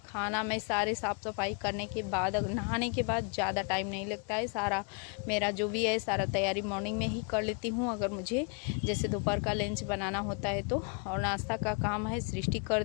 खाना मैं सारे साफ़ सफाई करने के बाद, नहाने के बाद ज़्यादा टाइम नहीं लगता है। सारा मेरा जो भी है सारा तैयारी मॉर्निंग में ही कर लेती हूँ, अगर मुझे जैसे दोपहर का लंच बनाना होता है तो। और नाश्ता का काम है सृष्टि कर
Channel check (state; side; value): quieter; right; 35.9 dB